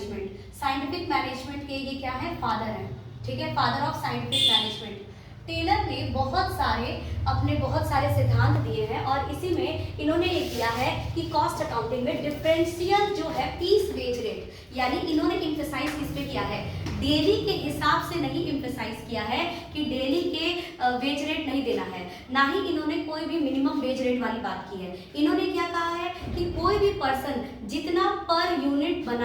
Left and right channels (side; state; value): both; identical; correlation 1.00